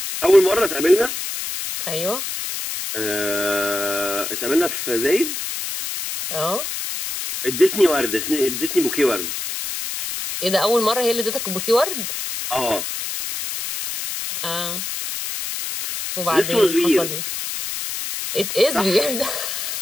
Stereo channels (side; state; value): left; noise; hiss, 5 dB below the sound